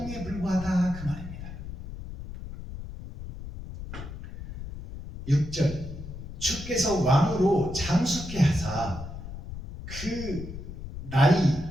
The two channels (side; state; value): left; noise; rumble, 10 dB below the sound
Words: 불과하다 그 말입니다. 6절 주께서 왕으로 장수케 하사 그 나이